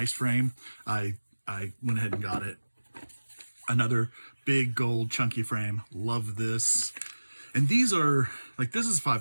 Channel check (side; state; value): both; inverted; correlation -1.00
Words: frame, I went ahead and got it. Another big gold chunky frame. Love this. And these are, like, this is